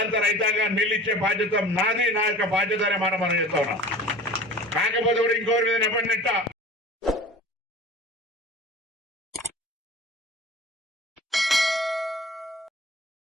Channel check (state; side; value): normal; both; correlation 0.40